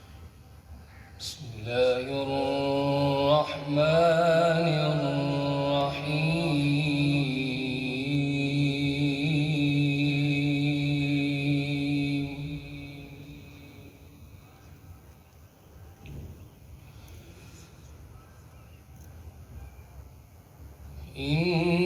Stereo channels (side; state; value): both; identical; correlation 1.00